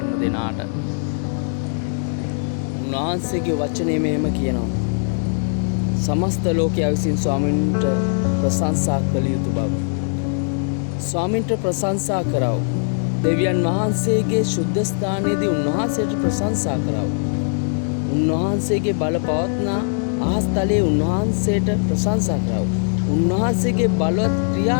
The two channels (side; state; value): right; silent; digital silence